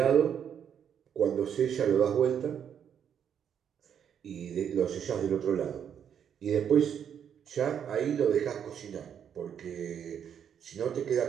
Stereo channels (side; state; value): left; quieter; 8.5 dB